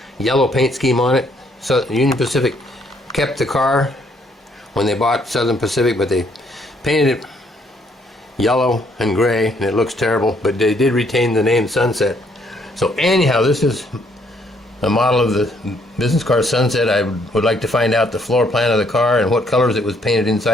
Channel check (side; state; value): both; normal; correlation 0.68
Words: yellow paint scheme on it. So Union Pacific kept the car when they bought Southern Pacific, but they painted it yellow and gray, and it looks terrible, but they did retain the name Sunset. So anyhow, this is a model of the business car Sunset. I would like to find out the floor plan of the car and what colors it was painted